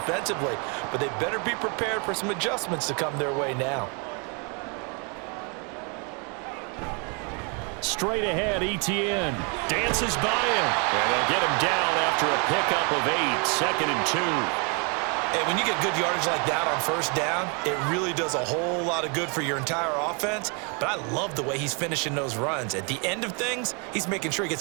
but they better be prepared for some adjustments to come their way now. Straight ahead, Etienne dances by him, and they'll get him down after a pickup of 8, 2nd and 2. Hey, when you get good yardage like that on first down, it really does a whole lot of good for your entire offense. But I love the way he's finishing those runs. At the end of things, he's making sure he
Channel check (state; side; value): quieter; left; 35.0 dB